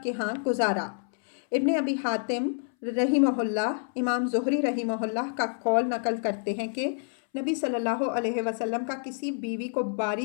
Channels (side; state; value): right; silent; 59 dB below the other